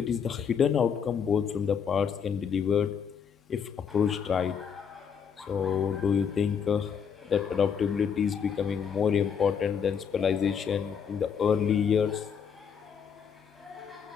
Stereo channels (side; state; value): right; quieter; 7.1 dB